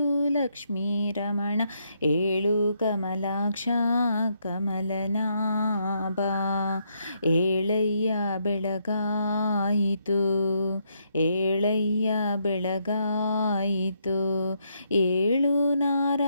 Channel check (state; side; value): inverted; both; correlation -0.76